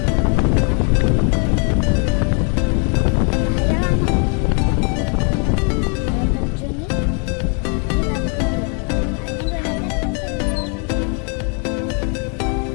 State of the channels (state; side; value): quieter; right; 38.4 dB